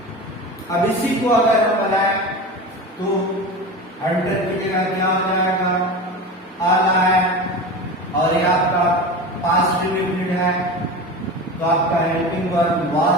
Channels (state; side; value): normal; both; correlation 0.29